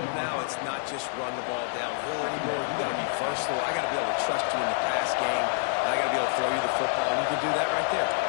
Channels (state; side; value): silent; right; 60 dB below the other